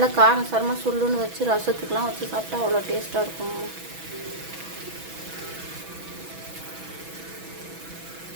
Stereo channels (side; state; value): left; late; 6.1 ms